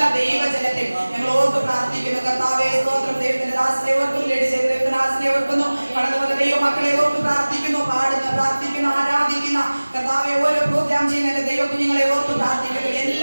ദൈവജനത്തെയും ഞങ്ങൾ ഓർത്ത് പ്രാർത്ഥിക്കുന്നു. കർത്താവേ സ്തോത്രം ദൈവത്തിന്റെ ദാസനെ ഓർക്കുന്നു, ലേഡി ചെയ്ത ദൈവത്തിന്റെ ദാസനെ ഓർക്കുന്നു, കടന്നു വന്ന ദൈവമക്കളെ ഓർത്ത് പ്രാർത്ഥിക്കുന്നു, പാടുന്ന പ്രാർത്ഥിക്കുന്ന ആരാധിക്കുന്ന കർത്താവെ ഓരോ പ്രോഗ്രാം ചെയ്യുന്ന ദൈവ കുഞ്ഞുങ്ങളെ ഓർത്ത് പ്രാർത്ഥിക്കുന്നു.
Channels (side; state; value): both; inverted; correlation -1.00